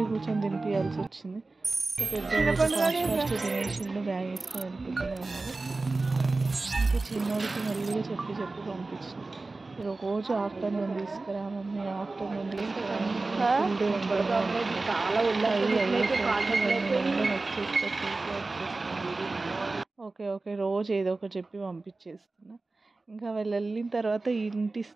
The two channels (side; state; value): left; quieter; 3.4 dB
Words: కూర్చొని తినిపించాల్సి వచ్చింది. ఇంకా పెద్ద ఫాస్ట్ తినేసిండు, బ్యాగ్ వేసుకొని వెళ్ళిపోతూనే ఉన్నారు. ఇంకా చిన్నోడికి మెల్లిగా చెప్పి పంపించిన. రోజు ఆఫ్టర్నూన్ తీసుకురా మమ్మీ, ఆఫ్టర్నూన్ తీసుకురా ఓకే రోజు ఏదో ఒకటి చెప్పి పంపించేస్తున్నా. ఇంకా వాళ్ళు వెళ్ళిన తర్వాత ఇంటి